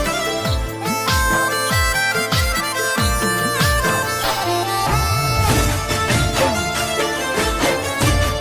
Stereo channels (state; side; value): identical; both; correlation 1.00